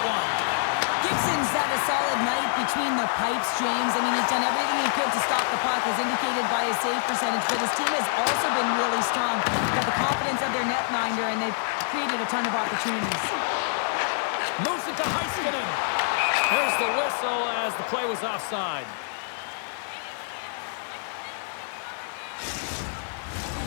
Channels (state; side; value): silent; right; 61 dB below the other